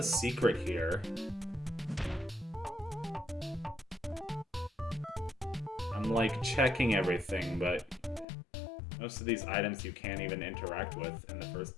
secret here? I'm, like, checking everything, but most of these items you can't even interact with in the first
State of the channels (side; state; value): right; drops out; at 8.2 s